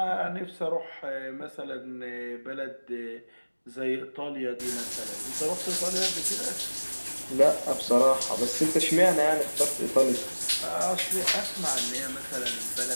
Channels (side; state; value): both; inverted; correlation -1.00